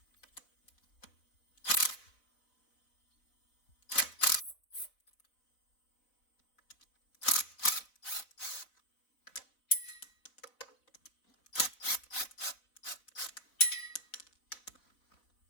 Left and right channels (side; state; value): right; late; 4.2 ms